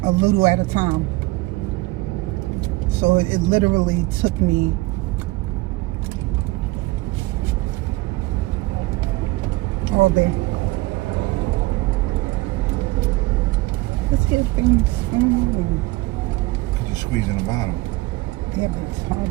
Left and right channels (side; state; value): left; quieter; 20.9 dB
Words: a little at a time. So it literally took me all day. Let's get things started. Because you're squeezing the bottom. Yeah, but it's hard